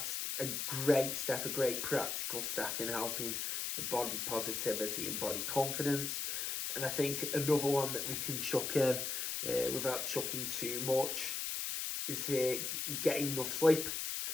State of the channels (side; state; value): left; noise; hiss, 2 dB below the sound